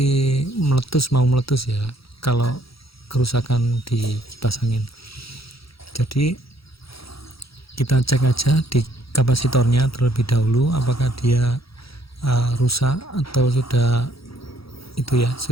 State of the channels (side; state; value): right; late; 0.76 ms